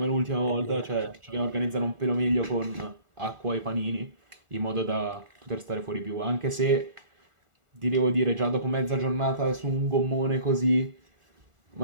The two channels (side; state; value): left; late; 1.4 ms